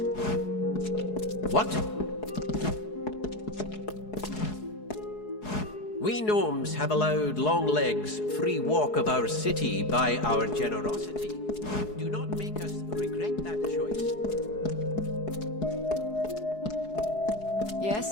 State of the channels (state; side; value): late; right; 4.7 ms